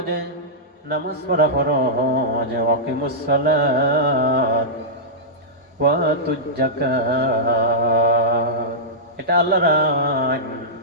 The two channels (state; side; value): normal; both; correlation -0.12